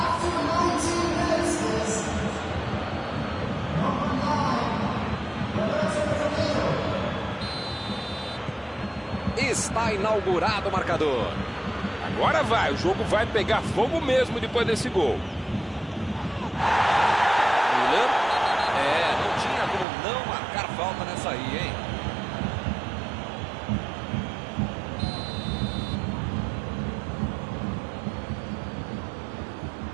Está inaugurado o marcador. Agora vai, o jogo vai pegar fogo mesmo depois desse gol. Milan. Não tinha como não marcar falta nessa aí, hein?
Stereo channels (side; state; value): left; drops out; at 19.9 s